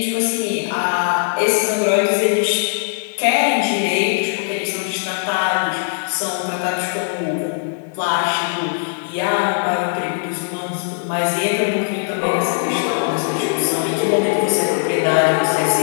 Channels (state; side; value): silent; right; digital silence